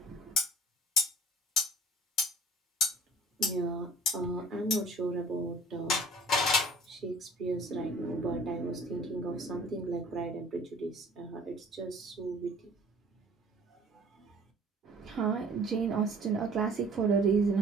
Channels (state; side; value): normal; both; correlation 0.50